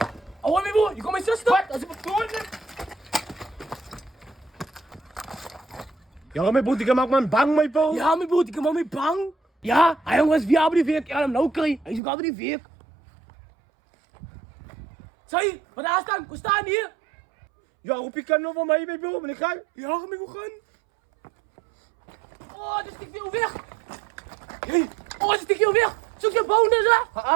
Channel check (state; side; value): drops out; left; at 12.0 s